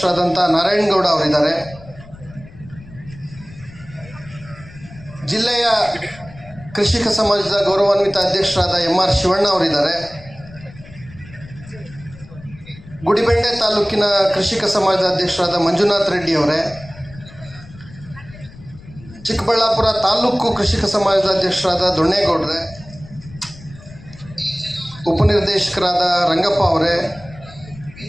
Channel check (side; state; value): left; noise; rumble, 19 dB below the sound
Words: ನಾರಾಯಣಗೌಡ ಅವರಿದ್ದಾರೆ. ಜಿಲ್ಲೆಯ ಕೃಷಿಕ ಸಮಾಜದ ಗೌರವಾನ್ವಿತ ಅಧ್ಯಕ್ಷರಾದ MR ಶಿವಣ್ಣ ಅವರಿದ್ದಾರೆ. ಗುಡಿಬೆಂಡೆ ತಾಲೂಕಿನ ಕೃಷಿಕ ಸಮಾಜದ ಅಧ್ಯಕ್ಷರಾದ ಮಂಜುನಾಥ್ ರೆಡ್ಡಿ ಅವರೇ, ಚಿಕ್ಕಬಳ್ಳಾಪುರ ತಾಲೂಕು ಕೃಷಿಕ ಸಮಾಜದ ಅಧ್ಯಕ್ಷರಾದ ದೊಣ್ಣೇಗೌಡ್ರೆ, ಉಪನಿರ್ದೇಶಕರಾದ ರಂಗಪ್ಪ ಅವರೇ,